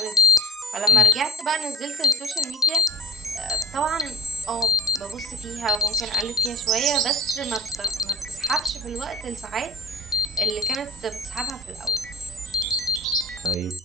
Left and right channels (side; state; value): both; normal; correlation 0.43